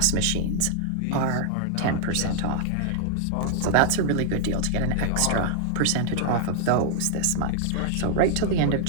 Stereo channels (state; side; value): different; both; correlation -0.01